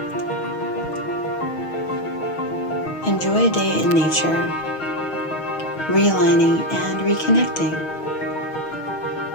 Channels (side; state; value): right; late; 6.3 ms